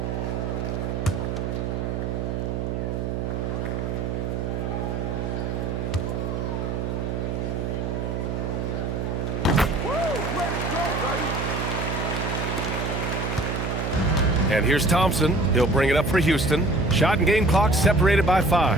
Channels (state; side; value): noise; right; hum, 2 dB below the sound